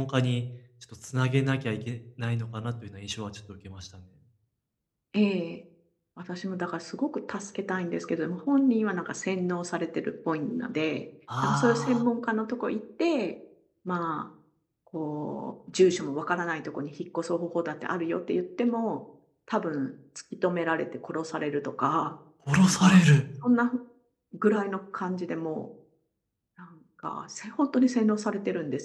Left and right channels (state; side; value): identical; both; correlation 1.00